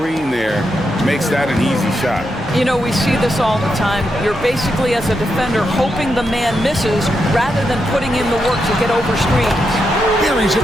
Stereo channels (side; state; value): left; noise; hum, 21 dB below the sound